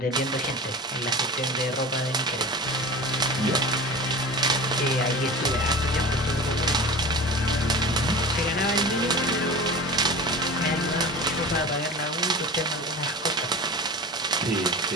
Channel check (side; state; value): both; normal; correlation 0.34